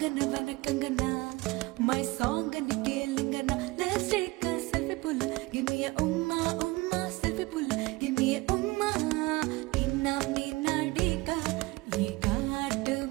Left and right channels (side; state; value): left; quieter; 22.5 dB